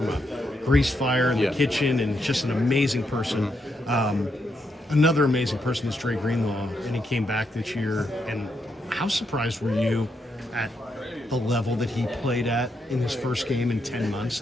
a grease fire in the kitchen, and just an amazing person. Mm-hmm. Another amazing person is Dre Greenlaw, and he came back this year. And how surprised were you at the level that he played at in his first game in 10 months?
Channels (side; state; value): both; normal; correlation 0.80